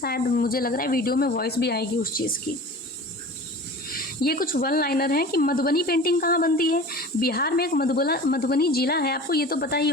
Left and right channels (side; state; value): both; normal; correlation 0.38